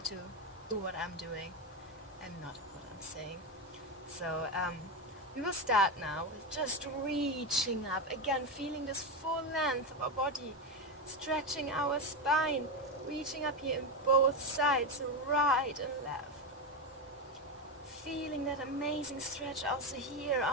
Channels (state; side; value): normal; both; correlation 0.13